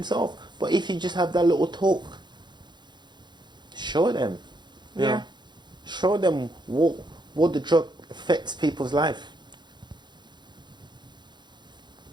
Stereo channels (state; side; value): late; left; 0.21 ms